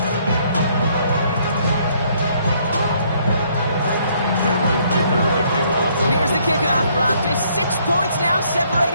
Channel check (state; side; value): inverted; both; correlation -0.66